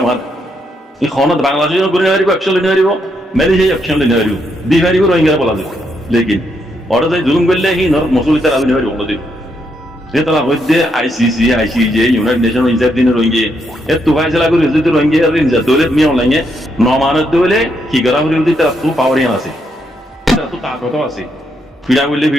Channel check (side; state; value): both; normal; correlation 0.78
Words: আর এই খনত বাংলাদেশ করে নেওয়ারিব অ্যাকশন নিয়ে পারিব মেলেশিয়া অ্যাকশন নিয়ে পারিব দি পারিব রোহিঙ্গারা বলা যায় লেকিন ওরা যাই জুলুম করলে হি নর মসুলি তারা নিয়ে পারিব নদী সে তারা হইতে আইসিজে ইউনাইটেড নেশন ইনসাফ দিনে রোহিঙ্গা এর তো ফায়সালা করে যদি রোহিঙ্গা আর ইনসাফ দৌলে মিয়া অনলাইনে নমানত দৌলে কি করা হলে তারা তো পাওয়ারিয়ান আছে তারা তো তাগত আছে ফিড়া বললে